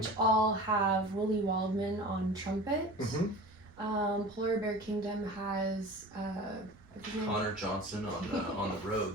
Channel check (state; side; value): noise; right; rumble, 26 dB below the sound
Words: all have Willie Waldman on trumpet. Polar Bear Kingdom has Connor Johnson on the